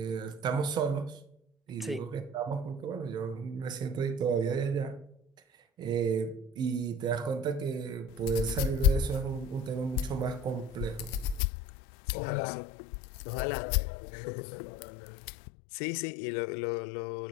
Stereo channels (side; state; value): right; drops out; at 11.4 s